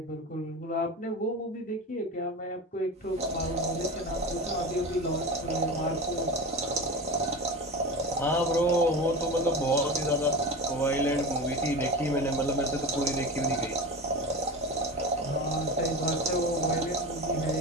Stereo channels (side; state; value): both; normal; correlation 0.27